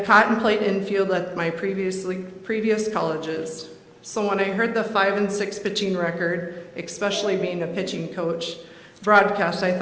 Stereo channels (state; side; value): identical; both; correlation 1.00